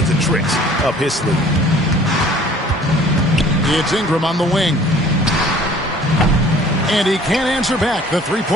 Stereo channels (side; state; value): both; normal; correlation 0.52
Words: of tricks up his sleeve. It's Ingram on the wing. And he can't answer back. The